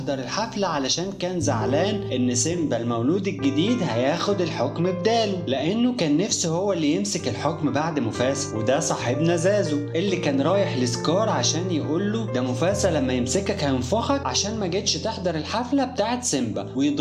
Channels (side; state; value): both; identical; correlation 1.00